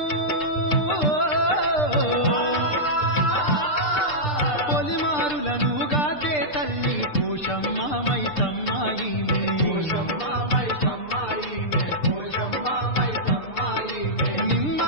పొలిమారులను గాచే తల్లి పోషమ్మ మైసమ్మ ఈమె, పోషమ్మ మైసమ్మ ఈమె, పోషమ్మ మైసమ్మ ఈమె.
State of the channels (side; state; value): right; late; 6.7 ms